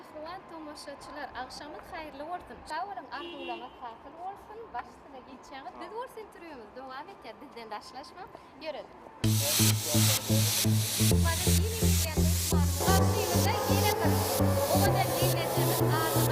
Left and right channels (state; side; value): identical; both; correlation 1.00